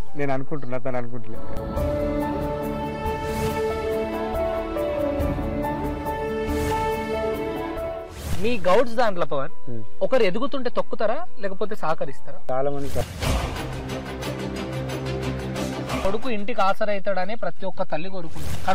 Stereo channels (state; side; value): identical; both; correlation 1.00